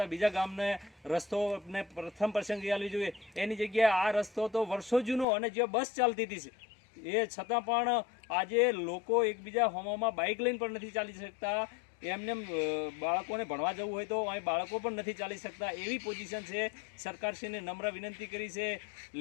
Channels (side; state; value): right; drops out; at 5.2 s